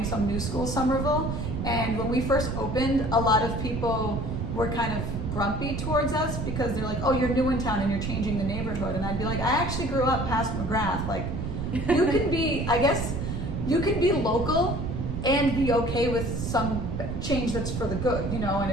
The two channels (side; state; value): right; noise; rumble, 4 dB below the sound